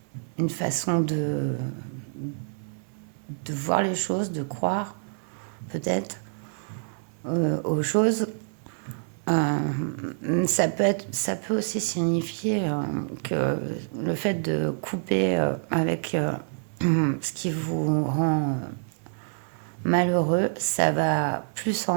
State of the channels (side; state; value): left; silent; digital silence